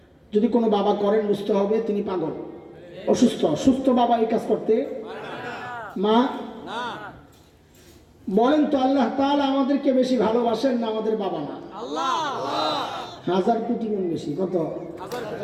যদি কোনো বাবা করেন বুঝতে হবে তিনি পাগল, অসুস্থ। সুস্থ বাবা এই কাজ করতে মা বলেন তো আল্লাহ তাআলা আমাদেরকে বেশি ভালোবাসেন না আমাদের বাবা মা? হাজার কোটি গুণ বেশি। কত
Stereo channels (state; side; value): identical; both; correlation 1.00